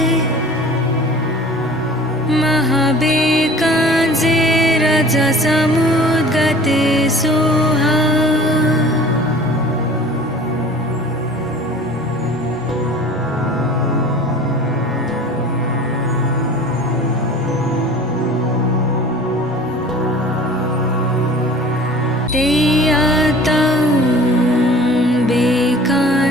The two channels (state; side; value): normal; both; correlation 0.44